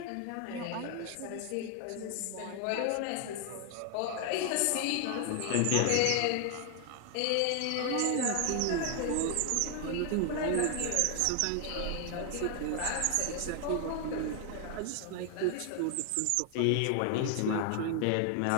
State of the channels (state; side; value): different; both; correlation 0.00